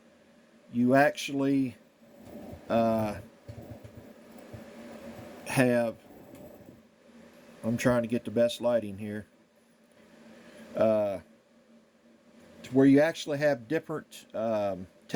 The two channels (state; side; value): identical; both; correlation 1.00